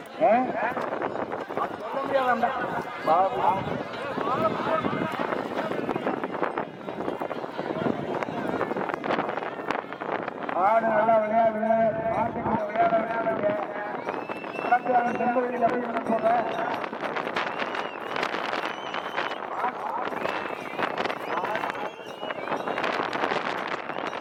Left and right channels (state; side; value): identical; both; correlation 1.00